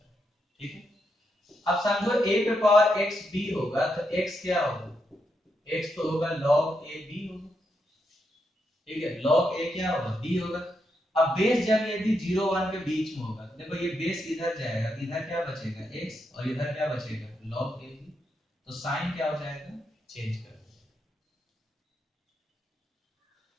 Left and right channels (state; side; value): normal; both; correlation 0.82